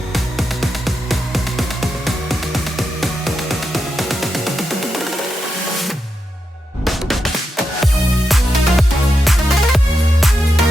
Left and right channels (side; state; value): both; normal; correlation 0.86